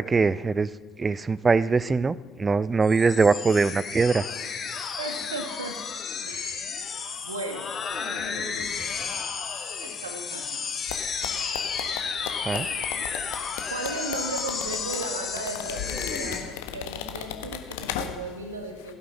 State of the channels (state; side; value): normal; both; correlation 0.73